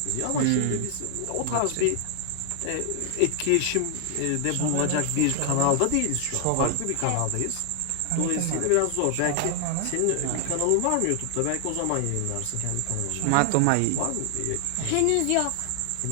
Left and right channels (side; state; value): both; different; correlation 0.00